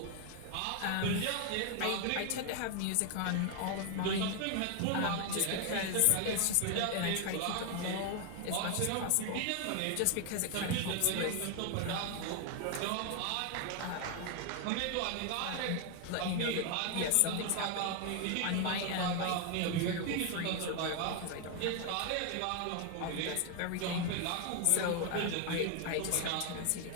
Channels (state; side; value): different; both; correlation 0.00